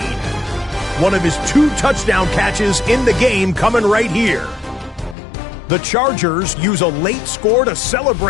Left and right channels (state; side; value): drops out; right; at 5.2 s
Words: one of his 2 touchdown catches in the game coming right here. The Chargers use a late score to